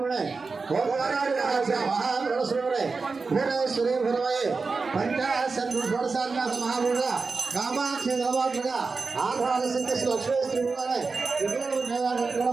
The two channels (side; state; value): left; quieter; 4.3 dB